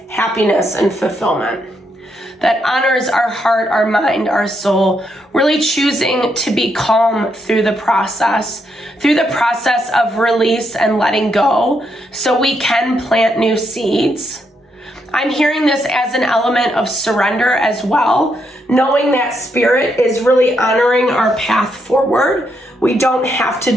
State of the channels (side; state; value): both; normal; correlation 0.78